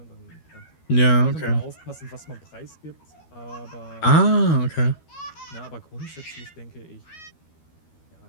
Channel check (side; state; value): right; late; 13 ms